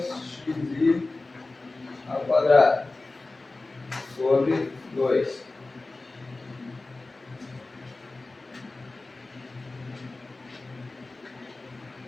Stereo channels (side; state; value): right; quieter; 3.3 dB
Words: xi ao quadrado sobre 2.